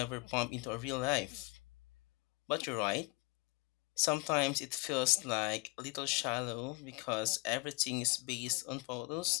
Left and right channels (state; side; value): quieter; right; 26.3 dB